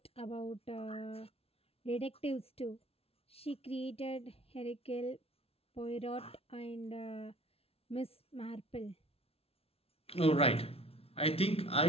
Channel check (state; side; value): late; right; 0.29 ms